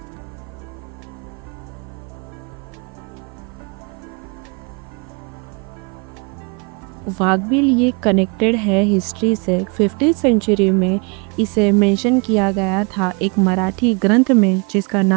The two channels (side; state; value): left; quieter; 32.6 dB